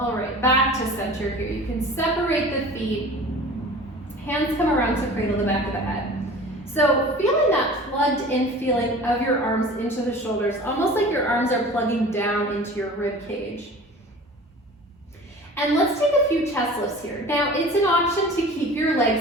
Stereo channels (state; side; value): normal; both; correlation 0.41